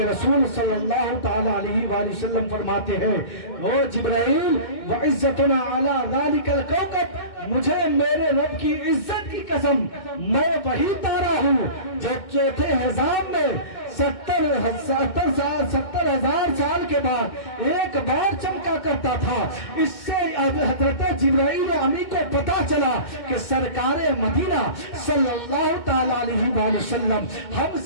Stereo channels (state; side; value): late; right; 2.2 ms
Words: रसूल सल्लल्लाहु ताला अलैहि वसल्लम फरमाते हैं, ओ जिब्राइल, व इज्जतुना अला ज़ालिकल कौकब, मुझे मेरे रब की इज्जत की कसम, मैं वही तारा हूँ जो चौथे हिसाब में 70,000 साल के बाद एक बार चमका करता था। इससे हजरत जिब्राइल अमी को पता चला कि सरकार मदीना सल्लल्लाहु ताला अलैहि वसल्लम